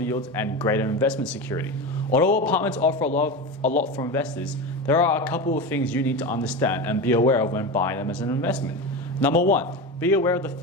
yields, and greater investment security. Although apartments offer a lot for investors, there are a couple of things you need to understand and be aware of when buying them as an investment. Number one, be aware of the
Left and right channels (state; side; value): normal; both; correlation 0.22